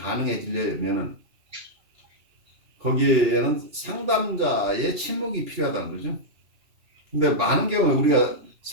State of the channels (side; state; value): left; late; 2.9 ms